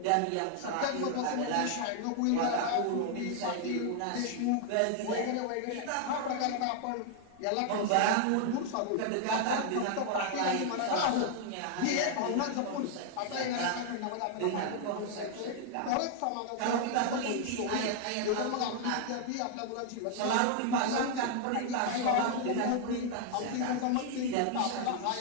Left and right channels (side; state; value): both; different; correlation 0.00